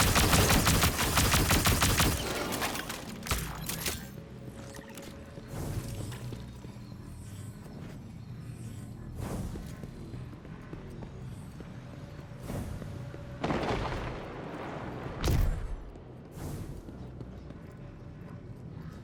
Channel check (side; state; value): both; identical; correlation 1.00